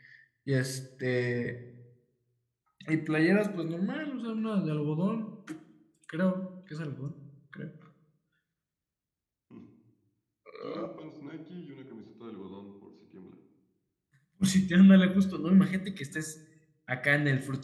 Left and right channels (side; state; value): both; identical; correlation 1.00